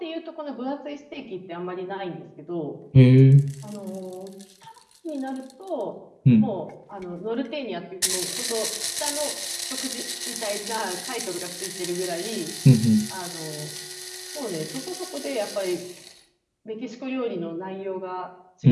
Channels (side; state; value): both; identical; correlation 1.00